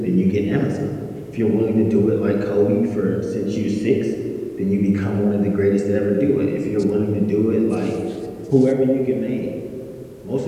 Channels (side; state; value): both; identical; correlation 1.00